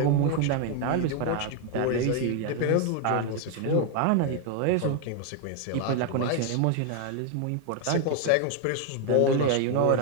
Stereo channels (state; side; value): different; both; correlation 0.01